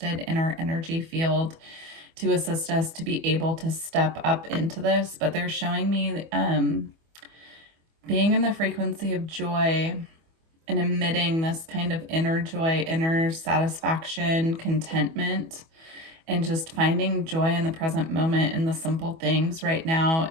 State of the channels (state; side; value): late; left; 25 ms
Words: in our energy field to assist us to be able to step up into this. But they're showing me being in the frequency of joy and emitting this kind of inner joy, inner satisfaction, contentment, and just finding joy in the present moment in the simple things right now